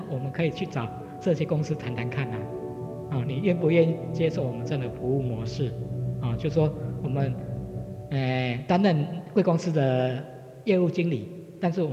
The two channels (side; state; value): both; identical; correlation 1.00